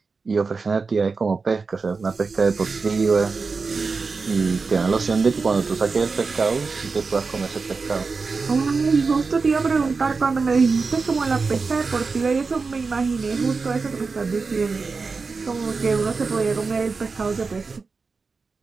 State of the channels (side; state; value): left; quieter; 4.5 dB